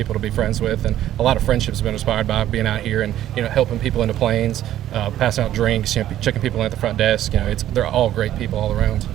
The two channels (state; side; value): quieter; left; 12.4 dB